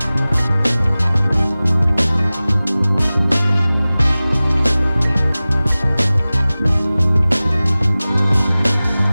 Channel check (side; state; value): both; inverted; correlation -0.98